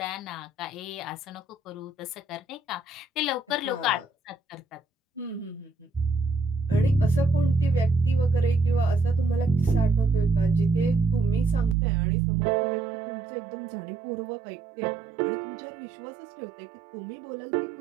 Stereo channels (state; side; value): drops out; left; at 11.8 s